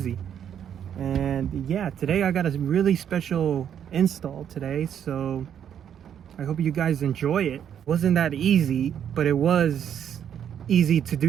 And yeah, today I got a really special install today, so I hope you guys enjoy it. Wasn't that easy, but it was easy to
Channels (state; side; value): quieter; left; 9.1 dB